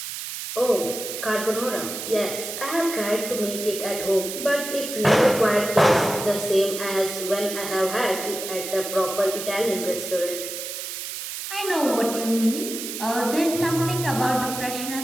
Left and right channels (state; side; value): noise; right; hiss, 7 dB below the sound